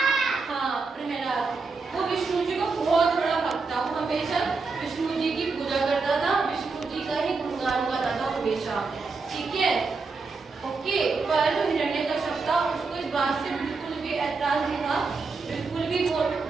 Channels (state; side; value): quieter; left; 4.3 dB